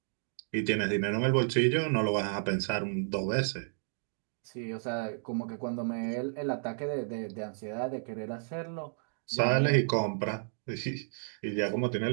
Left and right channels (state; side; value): silent; left; digital silence